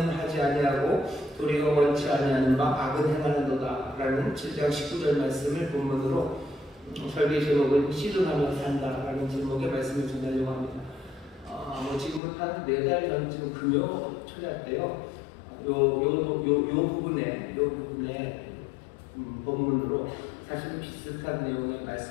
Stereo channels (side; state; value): right; drops out; at 12.2 s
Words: 하지 아니하고 도리어 원치 아니하는 바 악은 행하는도다 라는 7장 19절 말씀을 본문으로 설계 제목은 씨름하며 산다라는 제목의 말씀을 전하려고 합니다. 지금은 한 4달 전쯤 금요 초대 때요. 요 부분에 본문으로 사실 비슷한 내용의